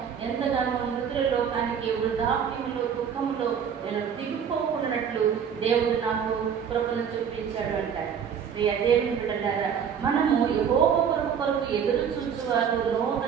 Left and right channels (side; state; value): left; quieter; 7.6 dB